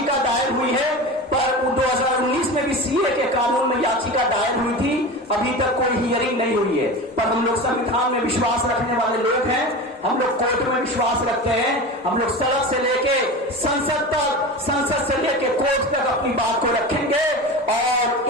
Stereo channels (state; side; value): normal; both; correlation 0.29